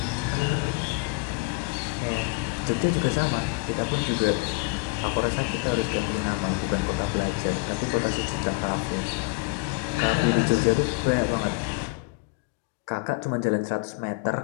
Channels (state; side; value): quieter; right; 27.3 dB